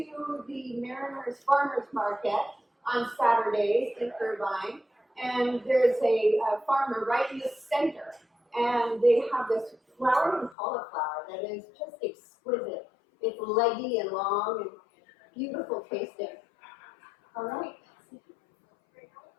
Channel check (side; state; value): right; drops out; at 10.6 s